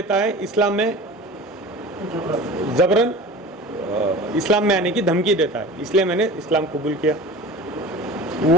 है, इस्लाम में जबरन इस्लाम में आने की धमकी देता है, इसलिए मैंने इस्लाम कबूल किया।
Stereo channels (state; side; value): normal; both; correlation 0.37